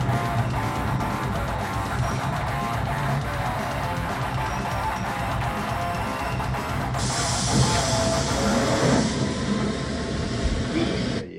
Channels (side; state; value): both; identical; correlation 1.00